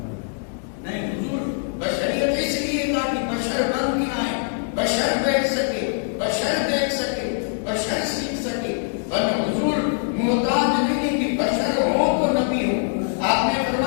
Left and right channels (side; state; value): right; silent; digital silence